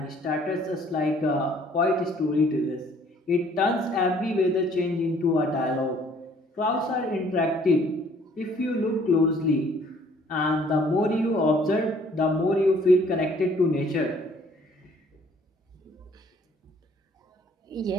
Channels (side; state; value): both; normal; correlation 0.59